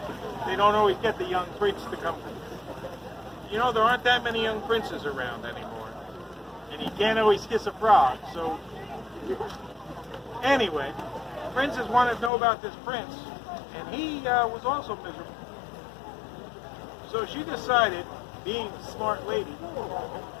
They don't always get the young prince to come. You know, there aren't that many young princes around anymore. And you can't always kiss a frog, so... Anyway, princess wanted to know about this prince, and he was also miserable. So she decided, being a smart lady,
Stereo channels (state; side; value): drops out; right; at 12.3 s